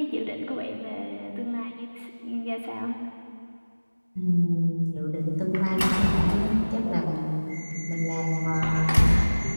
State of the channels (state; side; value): inverted; both; correlation -1.00